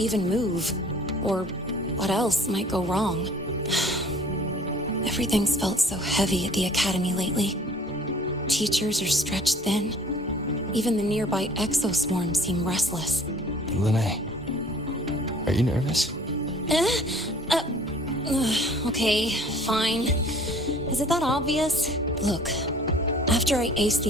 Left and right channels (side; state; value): both; normal; correlation 0.51